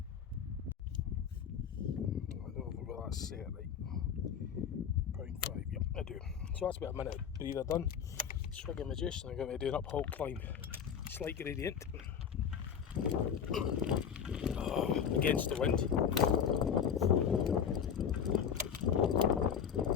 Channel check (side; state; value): right; quieter; 7.8 dB